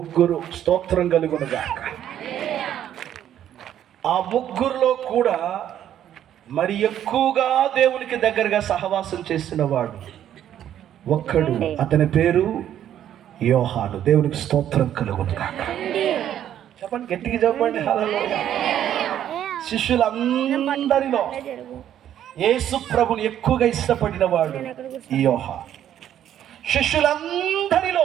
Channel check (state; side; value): quieter; left; 10.7 dB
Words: స్తోత్రం కలుగునుగాక. ఆ 3లో కూడా మరి ఎక్కువగా దేవునికి దగ్గరగా సహవాసం చేసిన వాడు ఒక్కడు, అతని పేరు యోహాను. దేవునికి స్తోత్రం కలుగునుగాక. చెప్పండి, గట్టిగా చెప్పండి హల్లెలూయా. శిష్యులందరిలో యేసు ప్రభుని ఎక్కువగా ఇష్టపడిన వాడు ఈ యోహాను.